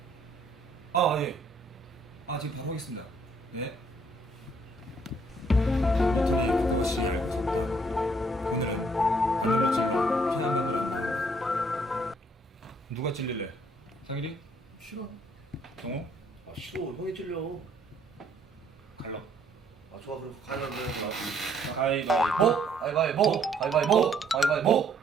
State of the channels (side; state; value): both; normal; correlation 0.65